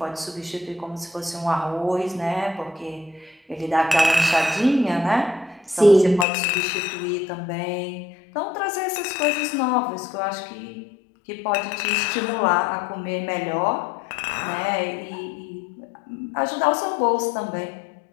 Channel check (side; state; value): right; drops out; at 6.2 s